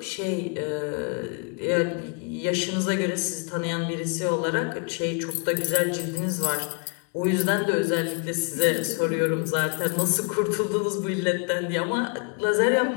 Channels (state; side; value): quieter; right; 37.4 dB